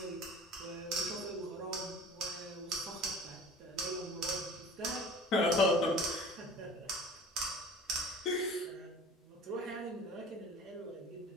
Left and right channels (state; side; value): normal; both; correlation 0.43